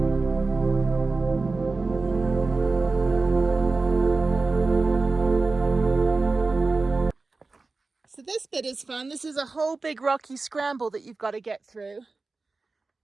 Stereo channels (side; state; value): left; quieter; 3.7 dB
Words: So this bit is fun. This is a whole big rocky scramble that you've got to get through.